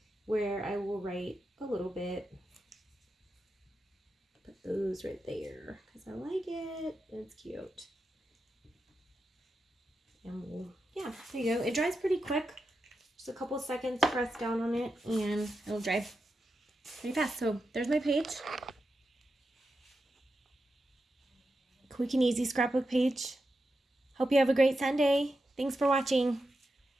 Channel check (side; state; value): both; normal; correlation 0.88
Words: where I will write a little bit. Put those right there because I like it. It's cute. And we'll, yeah, there you go. It dries pretty quick. Just a couple seconds, press down on it, and it'll dry pretty fast. So there's my page. Quick and easy scrapbook page. Hope you have a great Sunday. Thanks for watching.